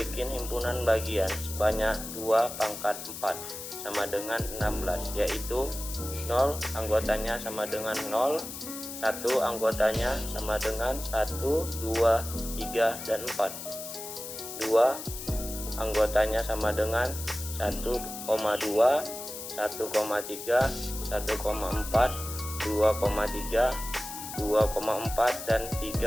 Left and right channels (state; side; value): noise; left; hiss, 9 dB below the sound